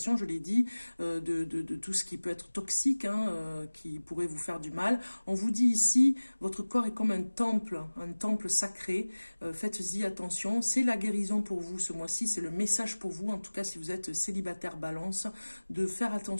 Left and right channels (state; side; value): inverted; both; correlation -1.00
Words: je l'ai dit, de tout ce qui peut être toxique, hein, qui pourrait vous faire du mal. On vous dit ici, votre corps est comme un temple sacré, faites-y attention, c'est la guérison pour vous ce mois-ci, c'est le message pour vous, en tout cas si vous êtes célibataire, balance, de faire